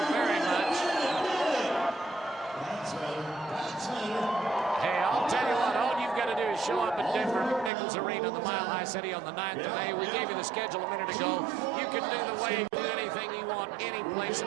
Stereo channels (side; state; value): left; drops out; at 7.7 s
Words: very much. Hey, I'll tell you what, all you've got to do is show up at Denver McNichols Arena, the Mile High City, on the 9th of May. We gave you the schedule a minute ago. You can do the wave, do anything you want, any place